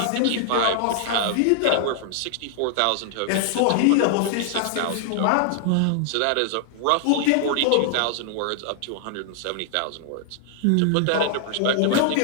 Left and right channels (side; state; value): both; different; correlation -0.01